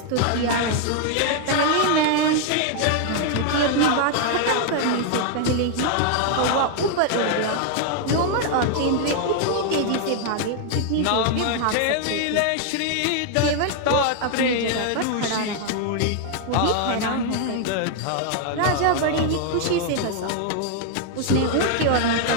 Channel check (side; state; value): both; different; correlation 0.00